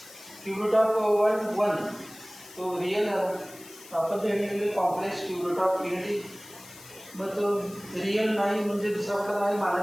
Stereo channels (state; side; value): noise; left; hiss, 19 dB below the sound